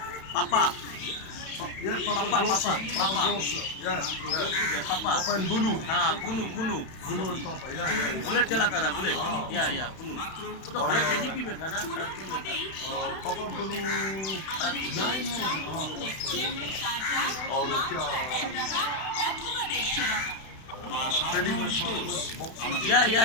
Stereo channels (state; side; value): late; right; 31 ms